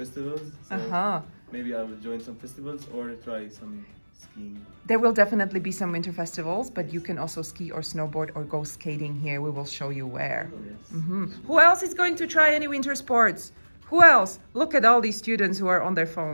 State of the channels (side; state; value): both; inverted; correlation -1.00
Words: So maybe I will join some festivals or try some skiing. There will definitely be some winter festivals, but you can also ski or snowboard or go skating here. We will show you where. Yes. Who else is going to try any winter sports? Who else? Look at all these students who are on their